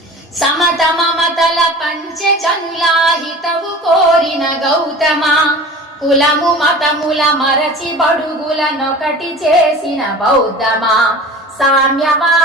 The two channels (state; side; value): normal; both; correlation 0.38